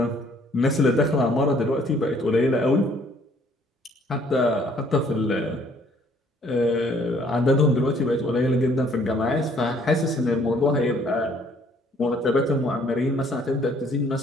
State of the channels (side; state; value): both; normal; correlation 0.61